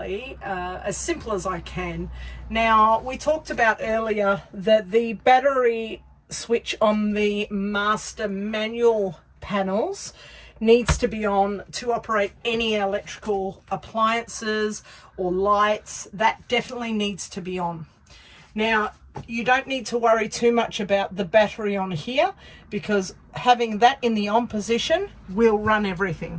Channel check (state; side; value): identical; both; correlation 1.00